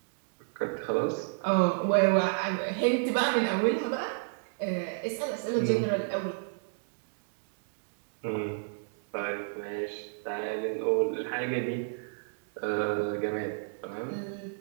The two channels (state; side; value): silent; left; digital silence